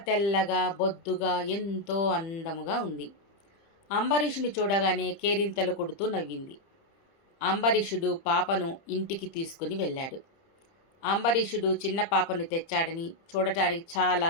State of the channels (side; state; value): right; late; 30 ms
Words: తెల్లగా బొద్దుగా ఎంతో అందముగా ఉంది. అంబరీషుని చూడగానే కేరింతలు కొడుతూ నవ్వింది. అంబరీషుడు పాపను ఇంటికి తీసుకుని వెళ్ళాడు. అంబరీషుడు చిన్న పాపను తెచ్చాడని చూడటానికి